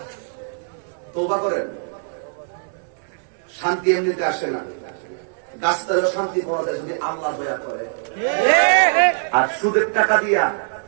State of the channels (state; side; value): silent; left; 64 dB below the other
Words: তওবা করেন। শান্তি এমনিতে আসে না, গাছটারও শান্তি পাওয়া যায় যদি আল্লাহ দয়া করে। আর সুদের টাকা দিয়া